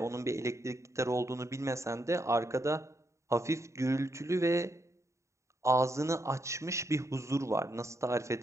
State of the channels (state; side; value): late; left; 0.14 ms